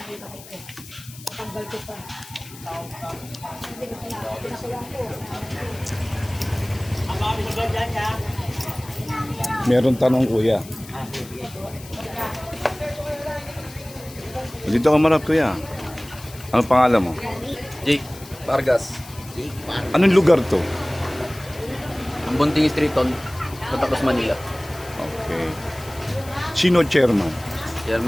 ko ito. Tanggal ko pa. Hindi ko pinakulang ko. Ang mga bisagal dyan niya. Meron tanong kuya. Dito ka marap kuya. Ano pangalan mo? Jake Vargas. Anong lugar to? Ang Bunting Street on Patacos, Manila. Okay. Sino chairman?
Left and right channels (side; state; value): left; noise; hiss, 18 dB below the sound